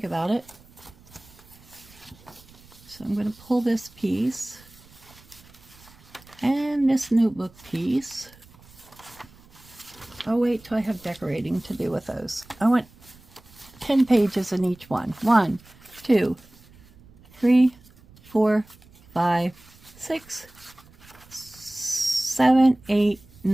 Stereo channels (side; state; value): right; noise; rumble, 25 dB below the sound